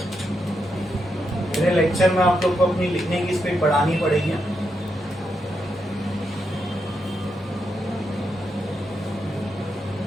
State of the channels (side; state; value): both; normal; correlation 0.83